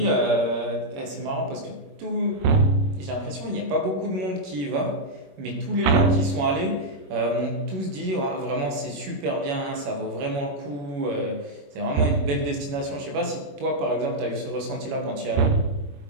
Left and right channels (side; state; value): left; late; 21 ms